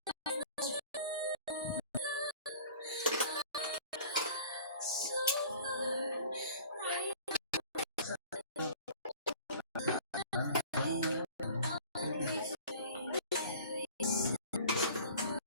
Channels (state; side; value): inverted; both; correlation -0.45